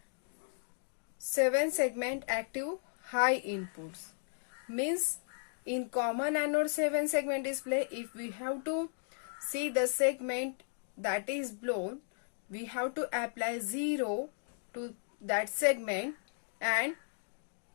7 segment active high inputs. Means in common anode 7 segment display, if we have to see the segment that is blown, we have to apply 0 to that segment, and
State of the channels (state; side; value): silent; right; digital silence